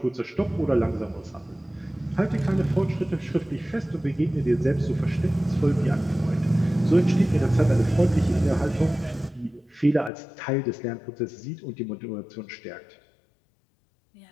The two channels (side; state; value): right; drops out; at 10.1 s